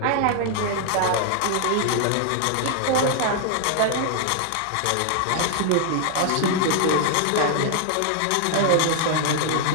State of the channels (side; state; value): both; different; correlation 0.00